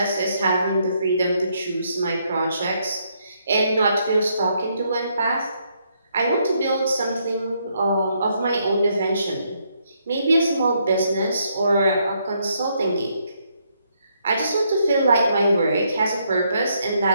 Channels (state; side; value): inverted; both; correlation -0.74